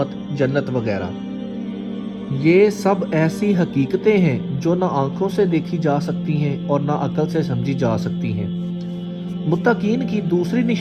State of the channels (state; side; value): identical; both; correlation 1.00